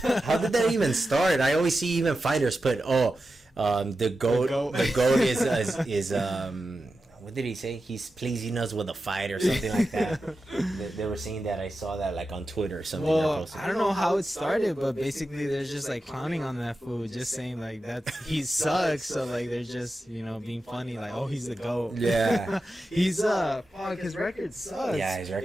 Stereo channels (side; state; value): both; normal; correlation 0.91